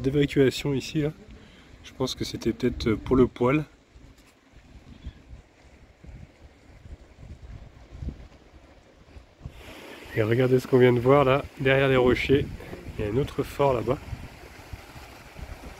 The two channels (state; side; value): identical; both; correlation 1.00